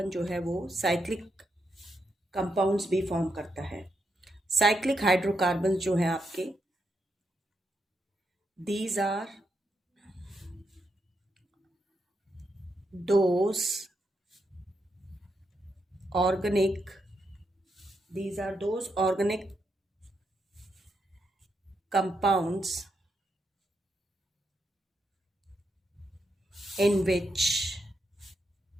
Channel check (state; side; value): normal; both; correlation 0.82